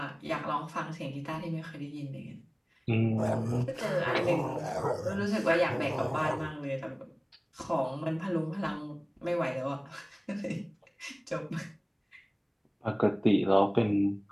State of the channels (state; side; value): identical; both; correlation 1.00